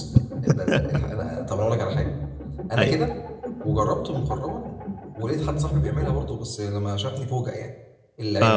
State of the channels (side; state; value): both; identical; correlation 1.00